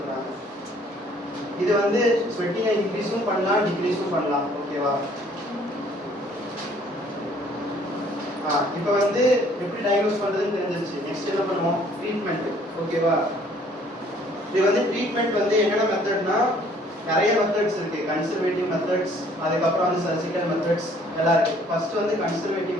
இது வந்து ஸ்வெட்டிங்கை இன்க்ரீஸும் பண்ணலாம் டிக்ரீஸும் பண்ணலாம். ஓகேவா? இப்போ வந்து எப்படி டயக்னோஸ் பண்றதுன்னு தெரிஞ்சிருச்சு. நெக்ஸ்ட் என்ன பண்ணுவோம்? ட்ரீட்மெண்ட். ஓகேவா? இது வந்து ட்ரீட்மெண்ட் வந்து என்னென்ன மெத்தட்னா நிறைய மெத்தட்ஸ் இருக்கு. கன்சர்வேட்டிவ் மெத்தட்ஸ், அதுக்கப்புறம் வந்து சர்ஜிக்கல் மெத்தட்ஸ் எல்லாம் இருக்கு. ஃபர்ஸ்ட் வந்து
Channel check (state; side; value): normal; both; correlation 0.59